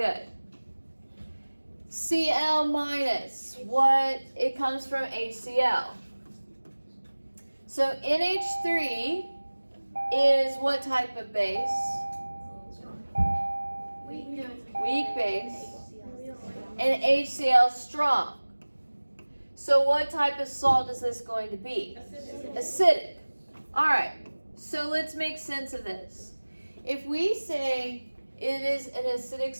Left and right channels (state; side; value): inverted; both; correlation -1.00